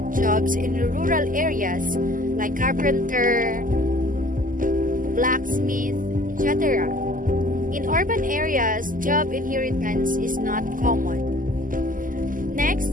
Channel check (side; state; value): left; late; 0.39 ms